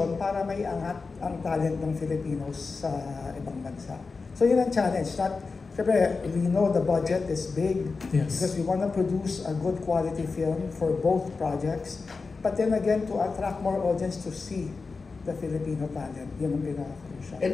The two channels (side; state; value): right; quieter; 4.3 dB